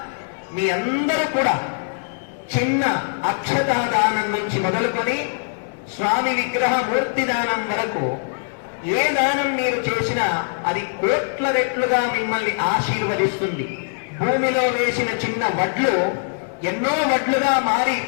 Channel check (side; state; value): right; silent; 62 dB below the other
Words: మీ అందరూ కూడా చిన్న అక్షతాదానం నుంచి మొదలుకొని స్వామి విగ్రహ మూర్తి దానం వరకు ఏ దానం మీరు చేసినా అది కోట్ల రెట్లుగా మిమ్మల్ని ఆశీర్వదిస్తుంది. భూమిలో వేసిన చిన్న వడ్లు ఎన్నో వడ్లుగా మారి